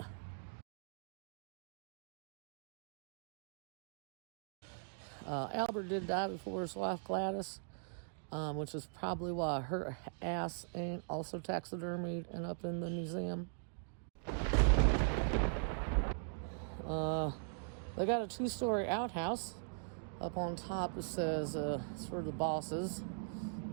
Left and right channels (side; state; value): left; silent; digital silence